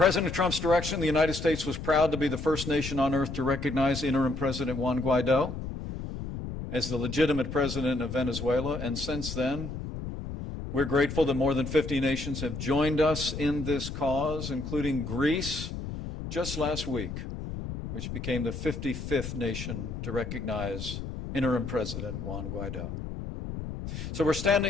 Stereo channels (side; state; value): left; noise; rumble, 7 dB below the sound